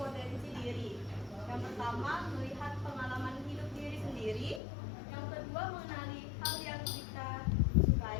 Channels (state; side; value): drops out; right; at 4.6 s